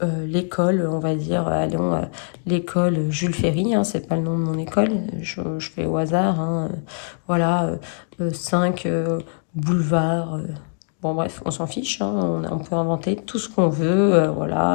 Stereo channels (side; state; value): right; silent; 64 dB below the other